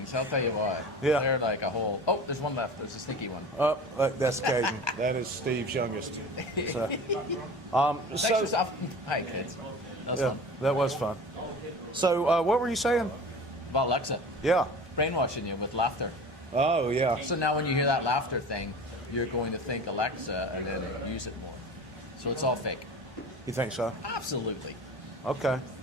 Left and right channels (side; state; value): both; normal; correlation 0.37